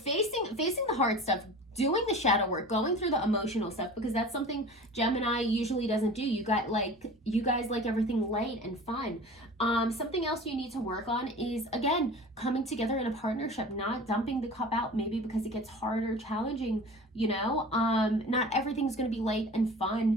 the hard stuff, doing the shadow work, going through the emotional stuff, because that's something Gemini usually doesn't do. You guys like everything light and fun. Something else you need to work on is, again, coming together in a partnership, not dumping the cup out, maybe because it gets harder, challenging, you know. Not everything's going to be light and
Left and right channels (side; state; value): both; normal; correlation 0.39